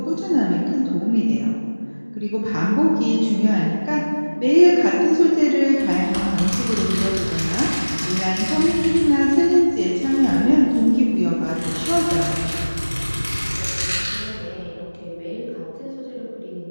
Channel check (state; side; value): inverted; both; correlation -1.00